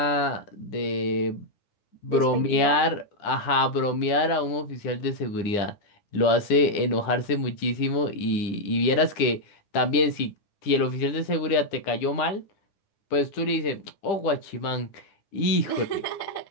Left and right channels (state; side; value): late; right; 9.9 ms